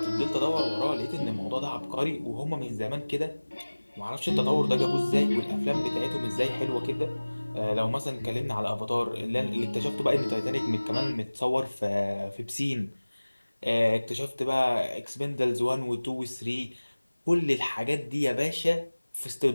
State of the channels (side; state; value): both; inverted; correlation -1.00